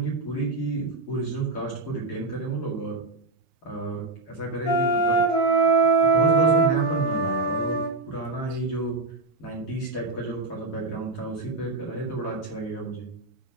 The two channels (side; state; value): left; quieter; 3.4 dB